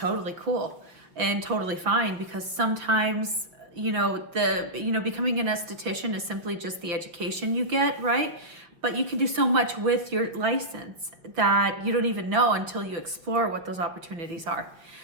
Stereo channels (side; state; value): left; late; 5.8 ms